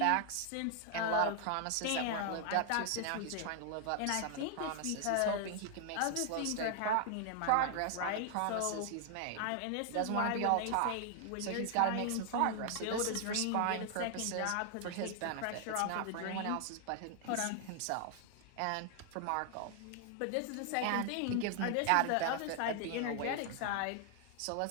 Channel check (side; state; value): both; different; correlation 0.00